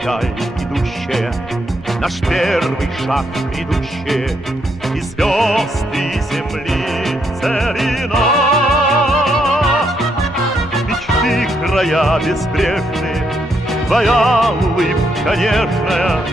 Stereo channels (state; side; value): normal; both; correlation 0.76